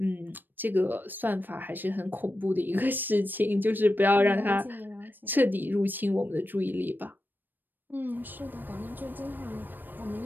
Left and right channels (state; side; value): late; left; 0.092 ms